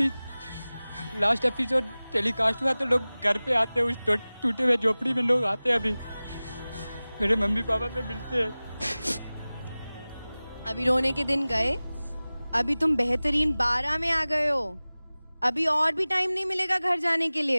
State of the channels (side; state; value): both; inverted; correlation -0.98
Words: लास्ट एपिसोड टेलीकास्ट हुआ तो लोग घर पे आते हैं, उस टूटे हुए झोपड़ी में लोग आते हैं, अभी मेरे मम्मी पापा से मिलते हैं। अभी रोने के दिन गए, अभी तुम बेहतरीन 12 में आ गए हो। अभी और भी टाइम नहीं मिलेगा घर जाने के